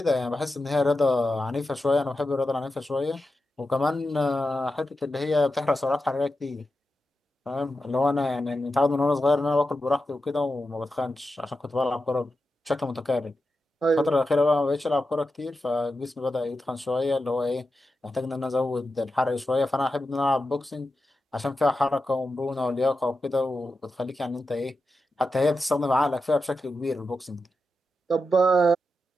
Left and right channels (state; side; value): normal; both; correlation 0.90